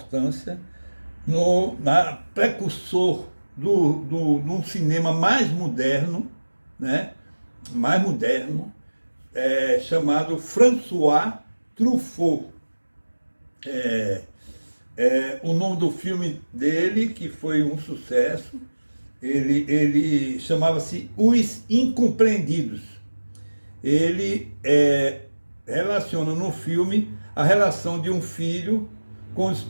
na precursor num cinema mais moderno, né? Mais moderno, chamado François Truffaut. O nome do filme dele, que foi um sucesso, ele chamava-se Os Incompreendidos. Ele relaciona no filme a relação de um filho com os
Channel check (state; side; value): inverted; both; correlation -1.00